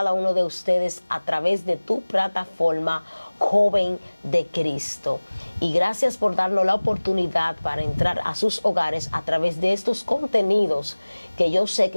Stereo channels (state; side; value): inverted; both; correlation -1.00